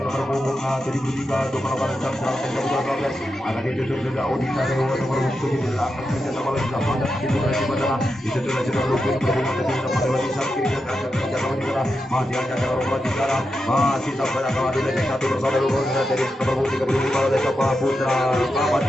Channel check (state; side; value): normal; both; correlation 0.88